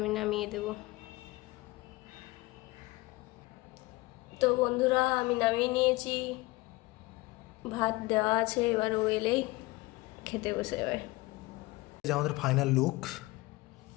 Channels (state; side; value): quieter; right; 21.7 dB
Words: নামিয়ে দেব। তো বন্ধুরা, আমি নামিয়ে নিয়েছি, ভাত দেওয়া আছে, এবার ও এলেই খেতে বসে যাবে। আমাদের ফাইনাল লুক,